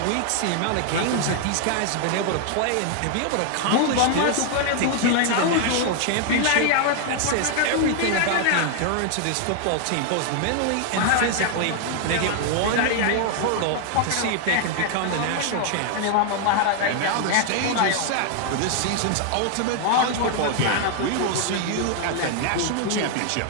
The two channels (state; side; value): different; both; correlation 0.00